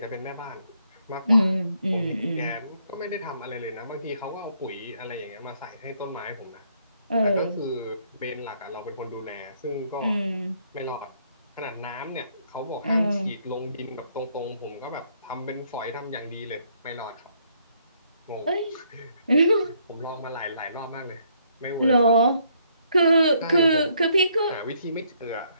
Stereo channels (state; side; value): inverted; both; correlation -0.69